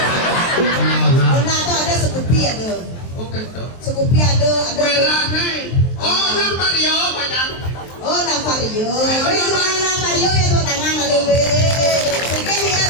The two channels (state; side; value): late; right; 23 ms